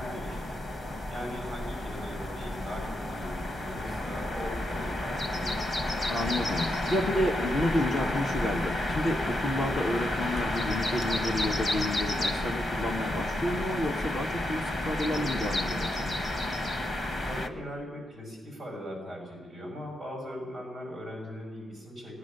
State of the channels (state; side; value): normal; both; correlation 0.83